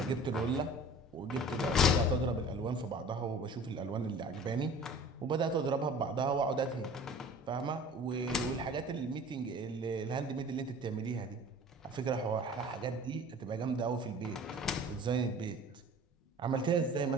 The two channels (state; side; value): normal; both; correlation 0.44